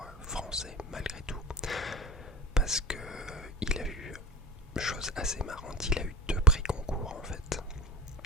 français malgré tout, parce que il a eu, chose assez marrante, il a eu 2 prix concours en fait.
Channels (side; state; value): both; normal; correlation 0.30